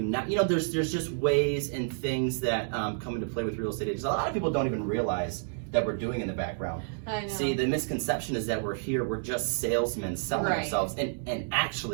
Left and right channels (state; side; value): silent; left; digital silence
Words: not, there's just ways and things that come into play with real estate agents. A lot of people don't even realize that we're doing in the background. I know. See, the misconception is that we're here, we're just salesmen selling ourselves. And